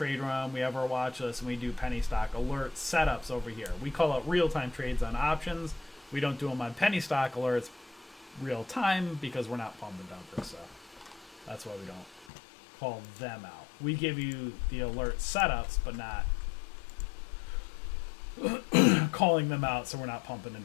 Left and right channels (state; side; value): drops out; right; at 12.2 s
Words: room, we have our watch list, and we do penny stock alert setups over here. We call it real-time trades on options. We don't do them on penny stock alerts real-time because we're not pump and dumper, so that's why we don't call them out. We give you the alert setups, but not calling them out, so we're not pumping